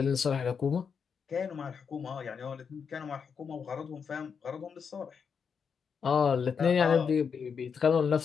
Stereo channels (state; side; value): quieter; right; 6.4 dB